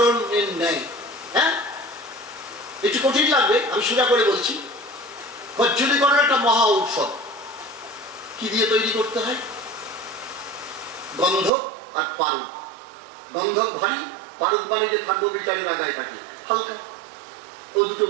ন্যায়। হ্যাঁ, একটু কঠিন লাগবে, আমি সোজা করে বলছি। কজ্জলীকরণ একটা মহা ঔষধ। কি দিয়ে তৈরি করতে হয়? গন্ধক আর পারদ। গন্ধক ভারী, পারদ মানে যে থাকবো বিচারের আগায় থাকে হালকা, ও দুটো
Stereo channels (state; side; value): drops out; left; at 11.5 s